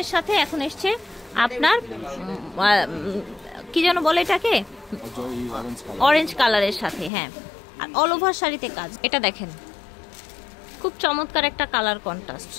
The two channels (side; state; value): right; drops out; at 7.1 s